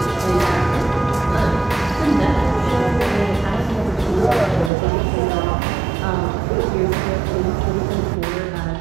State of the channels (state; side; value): drops out; left; at 4.7 s